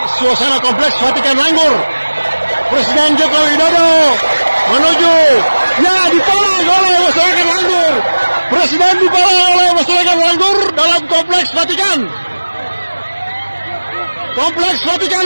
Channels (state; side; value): inverted; both; correlation -1.00